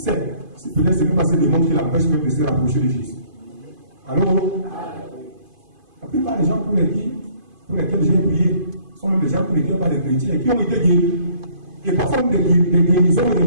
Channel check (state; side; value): late; left; 2.5 ms